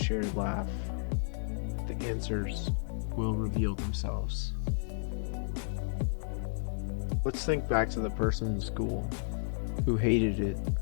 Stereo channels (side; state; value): right; silent; 56 dB below the other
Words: laugh, the answers will reveal themselves. Let's think back to the person in school who hated it